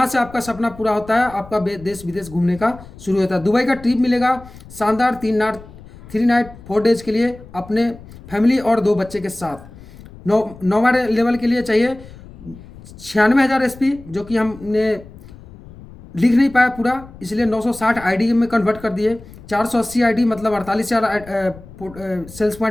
से आपका सपना पूरा होता है, आपका देश विदेश घूमने का शुरू होता है। दुबई का ट्रिप मिलेगा शानदार 3 नाइट 4 डेज के लिए अपने फैमिली और 2 बच्चे के साथ। 9वां लेवल के लिए चाहिए 96,000 एसपी, जो कि हमने लिख नहीं पाया पूरा, इसलिए 960 आईडी में कन्वर्ट कर दिए। 480 आईडी मतलब 48,000 सेल्स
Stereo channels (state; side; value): noise; left; rumble, 19 dB below the sound